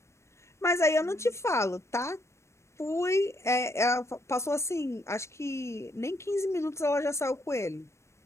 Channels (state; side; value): late; right; 0.13 ms